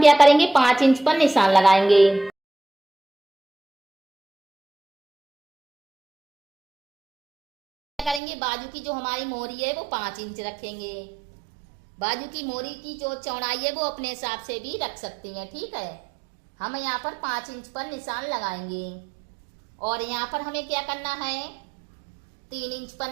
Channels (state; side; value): drops out; left; at 8.2 s